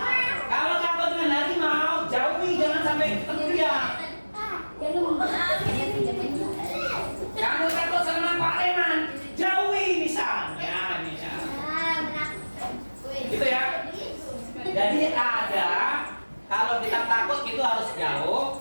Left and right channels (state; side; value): inverted; both; correlation -1.00